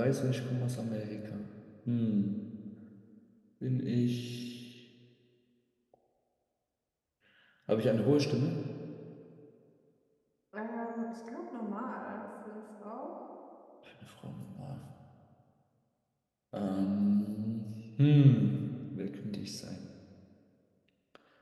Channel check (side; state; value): both; identical; correlation 1.00